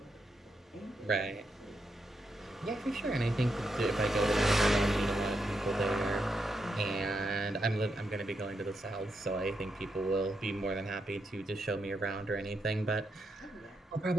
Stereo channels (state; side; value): normal; both; correlation 0.82